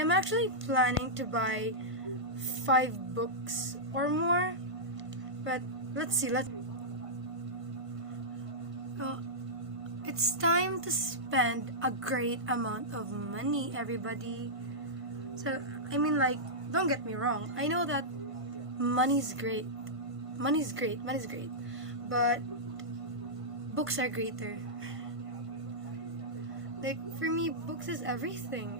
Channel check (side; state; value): left; late; 1.5 ms